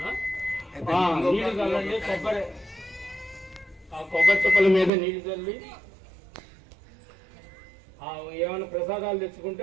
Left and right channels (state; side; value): drops out; left; at 4.9 s